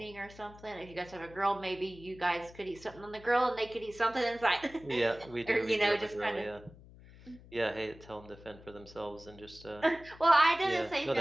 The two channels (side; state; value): left; noise; hum, 20 dB below the sound